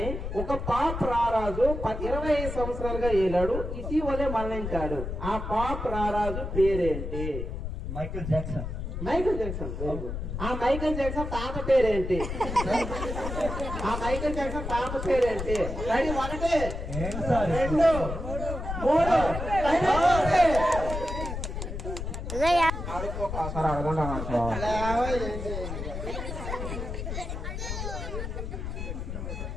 ఒక పాప్ రారాజు 25 సంవత్సరాలుగా ఏలాడు, ఇటీవలే మరణించాడు. ఆ పాప్ రారాజు పేరేంటి? Michael Jackson. Michael Jackson. ఆ మైకేల్ జాక్సన్ తాత పేరేంటి? ఆ మైకేల్ జాక్సన్ తాత పేరేంటి? రెడీ 1 2 3 అడుక్కోసారి అడగండి సార్.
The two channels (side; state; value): left; noise; rumble, 5 dB below the sound